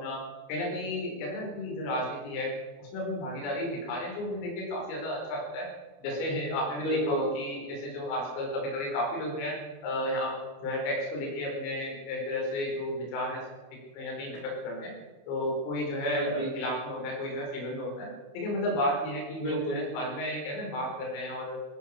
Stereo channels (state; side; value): late; right; 24 ms